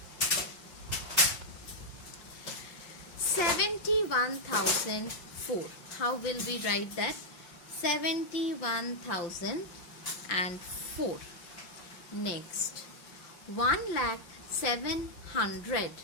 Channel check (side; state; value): right; late; 5.8 ms